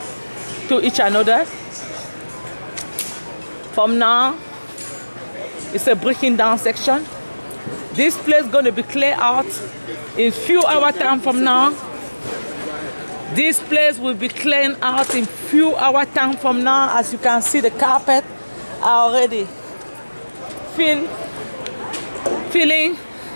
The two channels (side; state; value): both; inverted; correlation -1.00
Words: to each another. From now, it's a breaking down section. This place is going to be cleared out in few hours time from now. This place will be cleaned out in few hours time from now. As you can see, the carpet are already feeling.